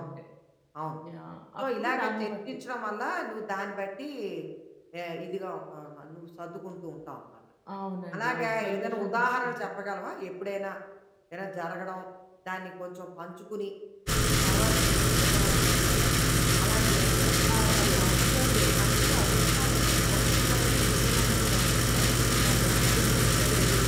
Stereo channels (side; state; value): both; identical; correlation 1.00